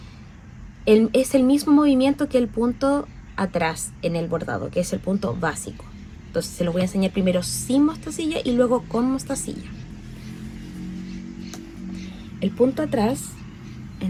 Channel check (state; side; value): identical; both; correlation 1.00